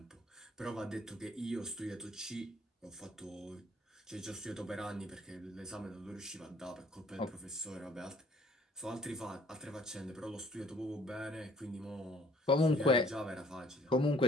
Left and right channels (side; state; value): both; normal; correlation 0.59